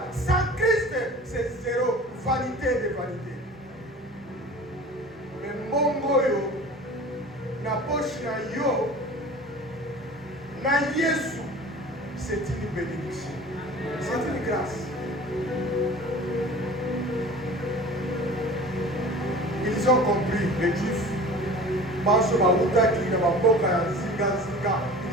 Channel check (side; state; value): both; normal; correlation 0.41